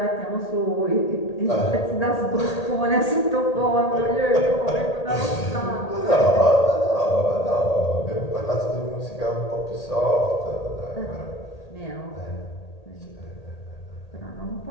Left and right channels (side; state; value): right; late; 1.8 ms